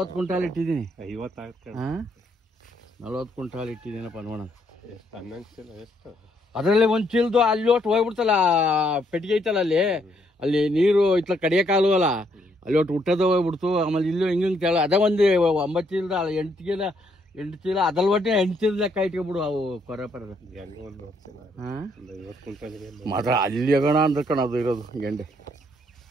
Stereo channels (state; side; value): normal; both; correlation 0.71